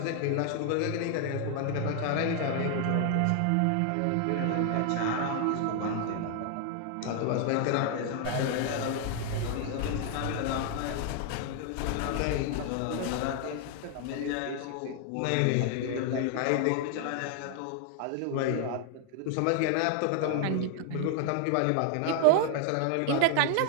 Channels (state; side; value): different; both; correlation 0.00